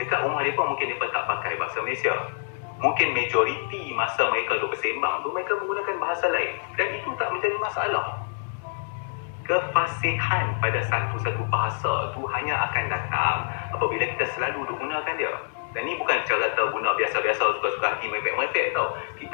rumah mereka mungkin mereka tak pakai bahasa Malaysia. Mungkin majoriti masa mereka duduk bersembang tu mereka menggunakan bahasa lain. Dan itu tak menjadi masalah. Kefasihan pada satu-satu bahasa tu hanya akan datang apabila kita selalu duk gunakan dia. Dan ni bukan cara kita guna biasa-biasa suka-suka hati merepek-merepek tau.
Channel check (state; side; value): silent; right; digital silence